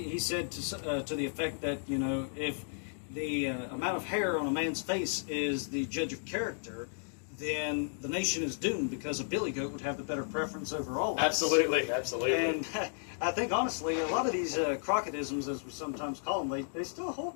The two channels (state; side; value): silent; right; digital silence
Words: said to the effect that, you know, if the amount of hair on a man's face is the judge of character, then the nation is doomed, because a billy goat would have the better preference over all of us. Absolutely, absolutely. And I think, honestly, a lot of these Crocketisms, as we sometimes call them, they still